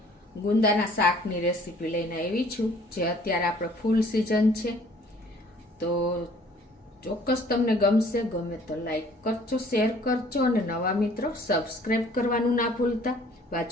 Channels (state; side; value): normal; both; correlation 0.55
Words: ગુંદાના શાકની રેસીપી લઈને આવી છું જે અત્યારે આપણે ફૂલ સિઝન છે. તો ચોક્કસ તમને ગમશે. ગમે તો લાઈક કરજો, શેર કરજો અને નવા મિત્રો સબસ્ક્રાઈબ કરવાનું ના ભૂલતા.